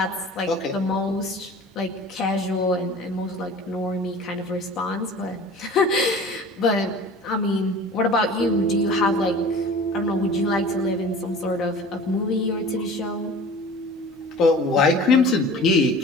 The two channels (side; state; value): both; normal; correlation 0.42